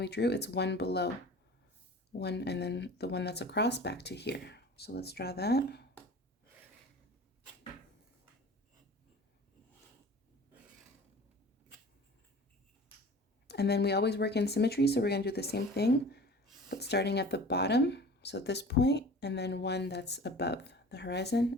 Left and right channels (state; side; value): normal; both; correlation 0.41